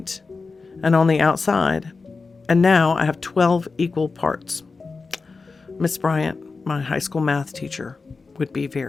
and on the outside, and now I have 12 equal parts. Miss Bryant, my high school math teacher, would be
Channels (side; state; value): right; quieter; 4.3 dB